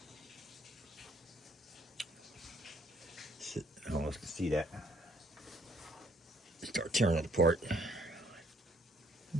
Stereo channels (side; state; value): both; normal; correlation 0.66